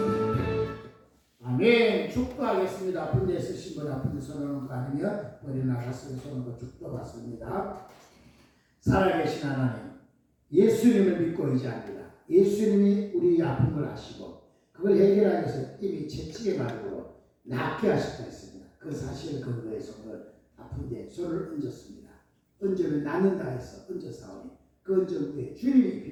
아멘. 축도하겠습니다. 아픈 데 쓰신 분 아픈 데 손을 거 아니면 머리 나갔으면 손을 축도받습니다. 살아계신 하나님, 예수님을 믿고 의지합니다. 예수님이 우리 아픔을 아시고 그걸 해결하기 위해서 이미 채찍의 말로 낫게 하셨다 했습니다. 그 사실 근거에서 오늘 아픈 데 손을 얹었습니다. 얹으면 낫는다 해서 얹어사오니 그 얹은 후에 주님이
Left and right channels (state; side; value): identical; both; correlation 1.00